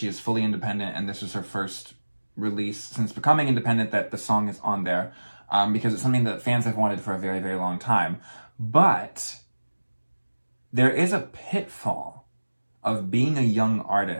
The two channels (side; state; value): both; inverted; correlation -1.00